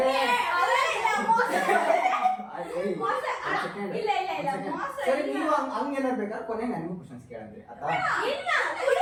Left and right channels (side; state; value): both; identical; correlation 1.00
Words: ಇಲ್ಲ ಇಲ್ಲ ಇಲ್ಲ ಮೋಸ ಸರಿ, ಇಲ್ಲ. ನೀವು ಹಂಗೇನಾರು ಬೇಕಾದ್ರೆ ಕೊನೆ ನನಗೂ ಕ್ವಶನ್ಸ್ ಕೇಳಿದ್ರಿ ಆಯ್ತಾ? ಇಲ್ಲ